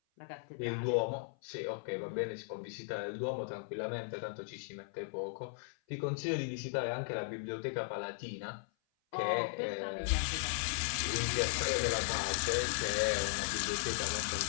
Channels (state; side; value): silent; right; 53 dB below the other